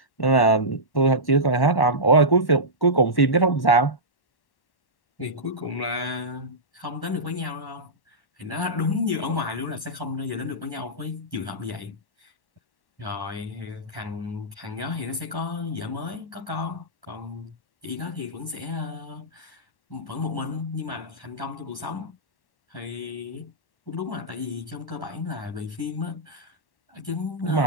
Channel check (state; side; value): late; right; 1.1 ms